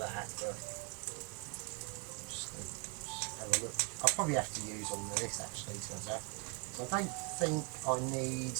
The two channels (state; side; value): quieter; left; 35.0 dB